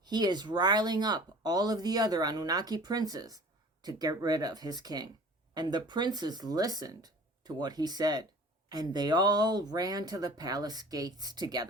He is riling up all of the other Anunnaki princes to get rid of his king. And the princes listened to what he said. And they all ran to the palace gates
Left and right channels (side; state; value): both; normal; correlation 0.44